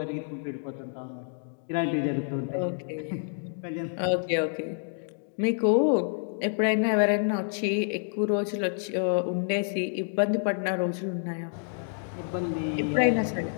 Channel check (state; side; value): silent; right; 59 dB below the other